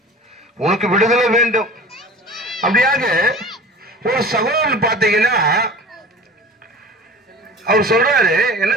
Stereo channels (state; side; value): normal; both; correlation 0.39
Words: உனக்கு விடுதலை வேண்டும். அப்படியாக ஒரு சகோதரன் பார்த்தீங்கன்னா அவர் சொல்றாரு, என்ன